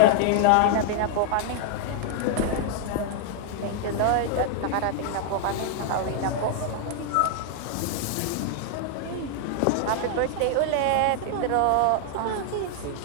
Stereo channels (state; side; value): different; both; correlation 0.00